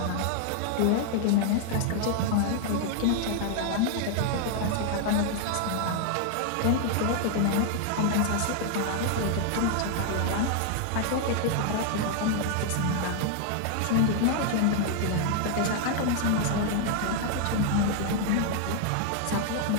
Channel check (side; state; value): both; different; correlation 0.00